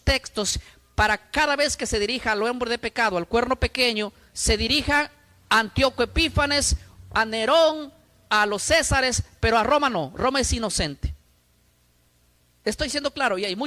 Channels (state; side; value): identical; both; correlation 1.00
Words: textos para cada vez que se dirija al hombre de pecado, al cuerno pequeño, se dirija a Antíoco Epífanes, a Nerón, a los Césares, pero a Roma no. Roma es inocente. Estoy siendo claro, y hay